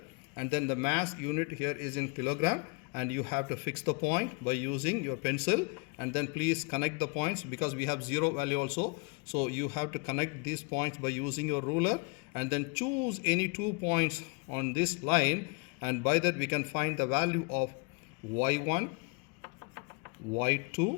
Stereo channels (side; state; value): right; quieter; 32.0 dB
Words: and then the mass unit here is in kilogram. And you have to fix the point by using your pencil, and then please connect the points because we have zero value also. So you have to connect these points by using your ruler, and then choose any 2 points on this line. And by that we can find the value of y1,